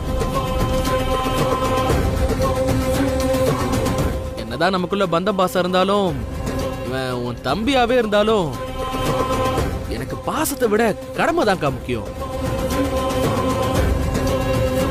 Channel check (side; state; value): both; identical; correlation 1.00